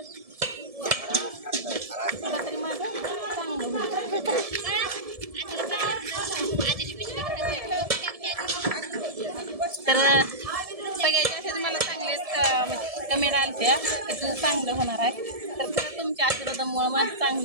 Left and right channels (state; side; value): late; left; 1.7 ms